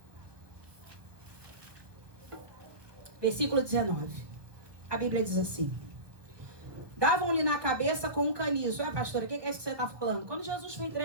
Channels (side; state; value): left; late; 1.0 ms